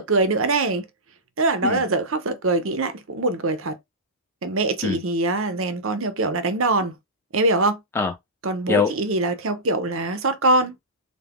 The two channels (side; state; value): both; normal; correlation -0.16